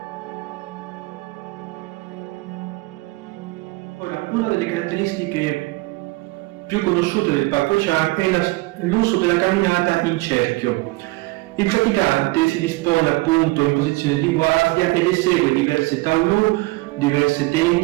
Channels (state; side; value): quieter; left; 22.5 dB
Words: Ora, una delle caratteristiche più conosciute del Pak Hwa-chant è l'uso della camminata in cerchio. Il praticante si dispone appunto in posizione di guardia ed esegue diverse taolu, diverse